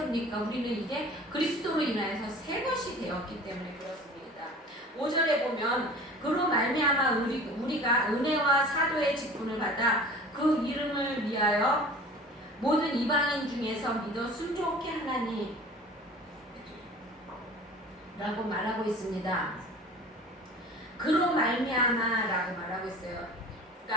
우리는 이제 그리스도로 인하여서 새 것이 되었기 때문에 그렇습니다. 5절에 보면 그로 말미암아 우리가 은혜와 사도의 직분을 받아 그 이름을 위하여 모든 이방인 중에서 믿어 순종케 하나니 라고 말하고 있습니다. 그로 말미암아 라고 말하고 있어요.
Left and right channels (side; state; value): both; normal; correlation 0.42